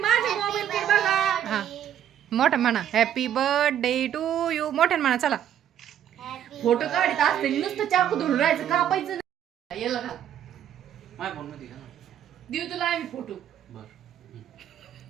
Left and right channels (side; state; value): left; quieter; 10.3 dB